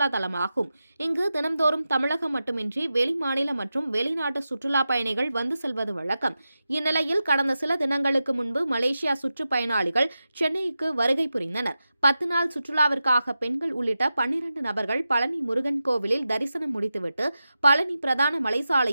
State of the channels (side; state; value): both; inverted; correlation -0.92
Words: தலமாகும். இங்கு தினம்தோறும் தமிழகம் மட்டுமின்றி வெளிமாநில மற்றும் வெளிநாட்டு சுற்றுலா பயணிகள் வந்து செல்வது வழக்கம். இந்நிலையில் கடந்த சில தினங்களுக்கு முன்பு மலேசியா சுற்றுப்பயணிகள் சென்னைக்கு வருகை புரிந்தனர். 10 நாள் சுற்றுலாவிற்காக பெண்கள் உள்ளிட்ட 12 நபர்கள் பழனி முருகன் கோவிலில் தரிசனம் முடித்துவிட்டு பழனி பிரதான